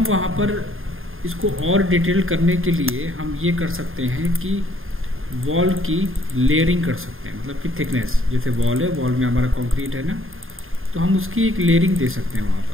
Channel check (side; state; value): left; late; 0.60 ms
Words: वहाँ पर इसको और डिटेल करने के लिए हम ये कर सकते हैं कि वॉल की लेयरिंग कर सकते हैं, मतलब कि थिकनेस। जैसे वॉल है, वॉल में हमारा कंक्रीट है ना, तो हम उसकी एक लेयरिंग दे सकते हैं वहाँ